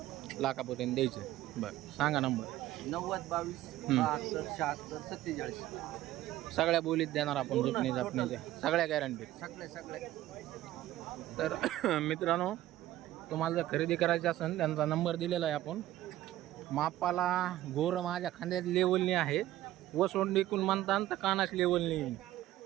लाखापर्यंत द्यायचं. बरं सांगा नंबर. 90 22 72 76 47. सगळ्या बोलीत देणार आपण. झुकणी झापणीच्या सगळ्या गॅरंटी. सगळे तर मित्रांनो तुम्हाला जर खरेदी करायची असेल त्यांचा नंबर दिलेला आहे आपण. मापाला गोर माझ्या खांद्यात लेवलनी आहे. वसोंड इकून म्हणता तर कानाच लेवलनी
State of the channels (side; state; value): left; quieter; 14.7 dB